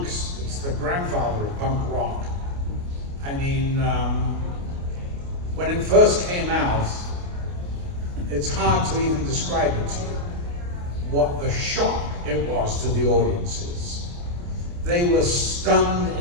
It's the grandfather of punk rock. I mean, when it first came out, it's hard to even describe it to you, what the shock it was to the audiences. they were stunned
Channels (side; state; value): left; late; 29 ms